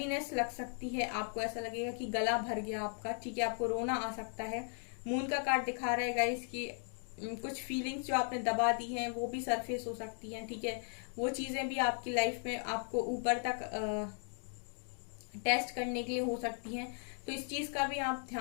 लग सकती है, आपको ऐसा लगेगा कि गला भर गया आपका। ठीक है, आपको रोना आ सकता है। मून का कार्ड दिखा रहा है गाइस कि कुछ फीलिंग्स जो आपने दबा दी हैं वो भी सरफेस हो सकती हैं। ठीक है, वो चीजें भी आपकी लाइफ में आपको ऊपर तक टेस्ट करने के लिए हो सकती हैं। तो इस चीज का भी आप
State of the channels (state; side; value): silent; right; 53 dB below the other